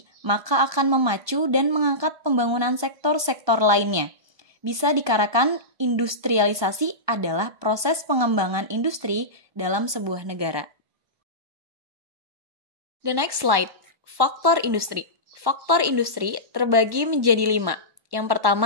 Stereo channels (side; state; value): left; late; 1.1 ms